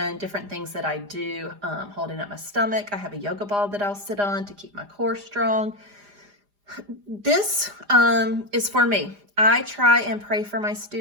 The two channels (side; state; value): left; late; 4.9 ms